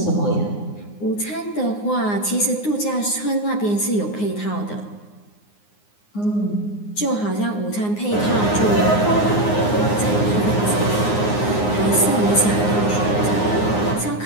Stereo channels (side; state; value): right; late; 9.7 ms